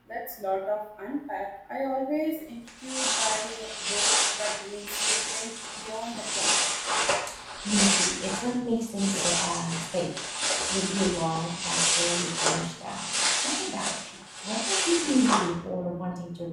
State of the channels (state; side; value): identical; both; correlation 1.00